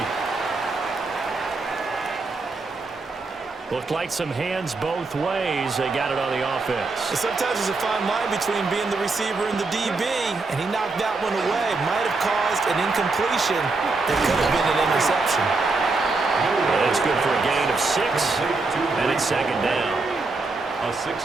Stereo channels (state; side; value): quieter; left; 3.7 dB